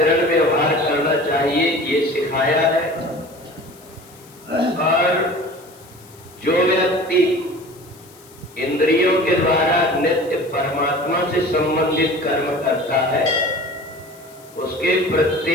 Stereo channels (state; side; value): noise; left; hiss, 25 dB below the sound